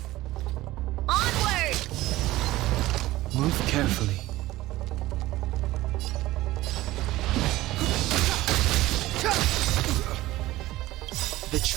Onward! Move carefully. The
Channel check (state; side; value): quieter; left; 17.1 dB